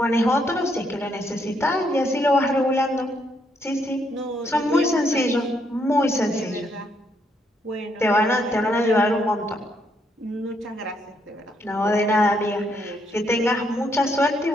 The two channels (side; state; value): both; normal; correlation 0.74